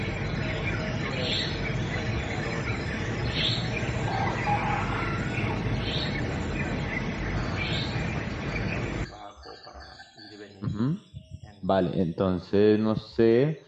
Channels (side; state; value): both; identical; correlation 1.00